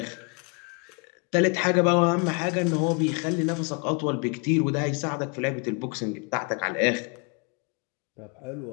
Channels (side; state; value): right; quieter; 34.5 dB